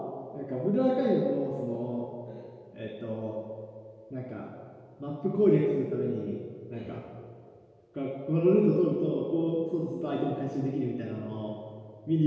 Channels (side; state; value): both; identical; correlation 1.00